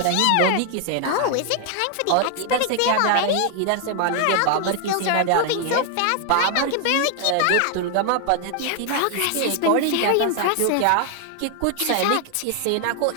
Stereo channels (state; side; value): different; both; correlation 0.00